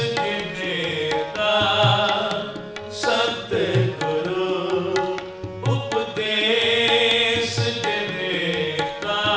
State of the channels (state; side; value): identical; both; correlation 1.00